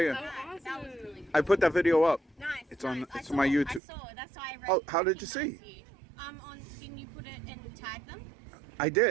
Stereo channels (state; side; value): drops out; left; at 3.8 s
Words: you? That was really cool. I put that video up. Nice. It's on- I it's saw on my it, YouTube. I saw it. That's why I Oh, how did you recognized see? you. Didn't you put it and tag them? I